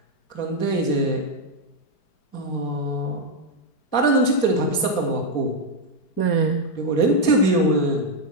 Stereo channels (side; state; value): right; late; 4.2 ms